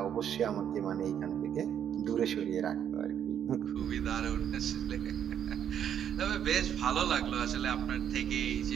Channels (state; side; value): quieter; left; 9.2 dB